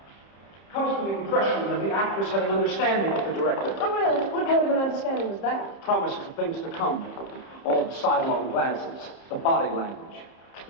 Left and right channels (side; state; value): right; late; 30 ms